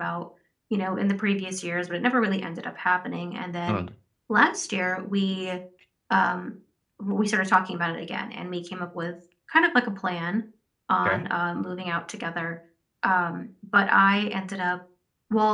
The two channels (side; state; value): both; identical; correlation 1.00